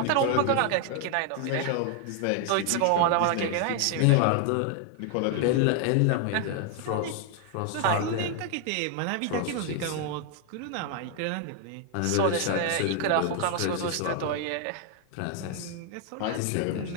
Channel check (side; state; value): both; different; correlation 0.00